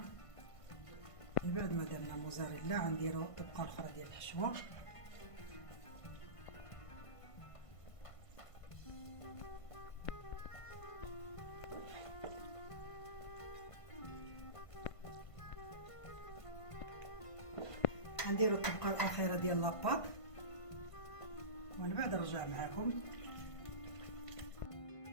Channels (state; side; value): late; right; 1.5 ms